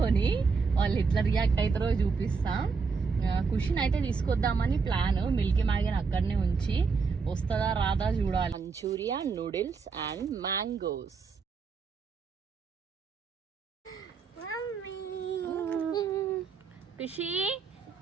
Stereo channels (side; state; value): left; quieter; 5.1 dB